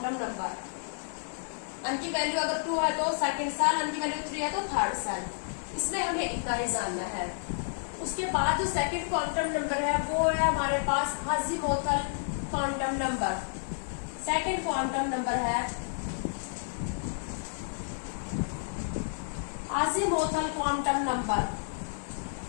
नंबर। अन की वैल्यू अगर 2 है तो सेकंड सेल, अन की वैल्यू 3 है तो थर्ड सेल। इसमें हमें इतना ही जानना है। उसके बाद जो सेकंड क्वांटम नंबर है वो है हमारे पास azimuthal quantum number. Second quantum number है अज़ीमुथल क्वांटम नंबर।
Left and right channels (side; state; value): right; silent; digital silence